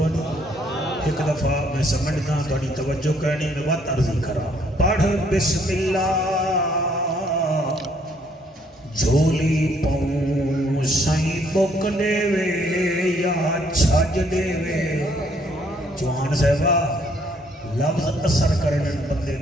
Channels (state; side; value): normal; both; correlation 0.67